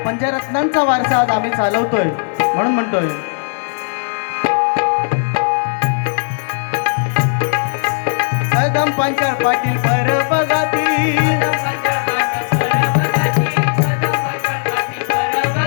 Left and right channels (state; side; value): silent; right; digital silence